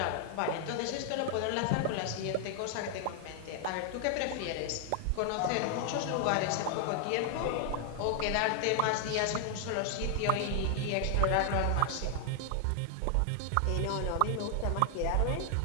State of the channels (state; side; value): different; both; correlation 0.00